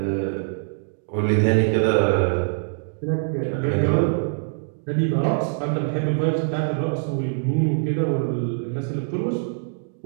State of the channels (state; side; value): silent; left; digital silence